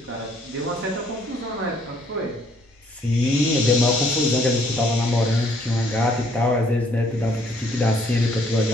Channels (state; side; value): normal; both; correlation 0.64